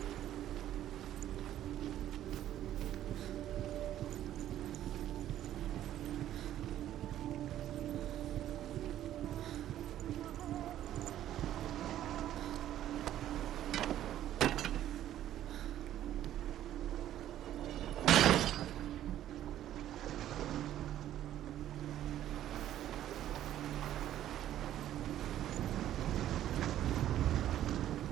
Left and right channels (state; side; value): quieter; left; 12.1 dB